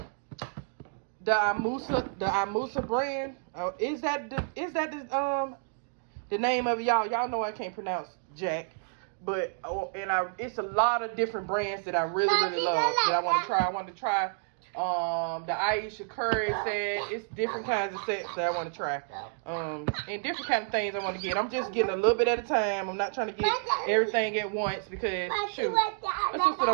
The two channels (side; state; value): left; silent; digital silence